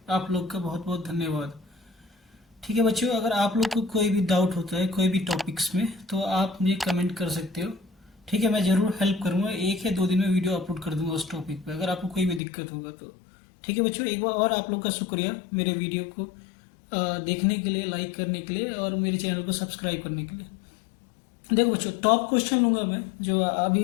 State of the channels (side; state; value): right; drops out; at 12.4 s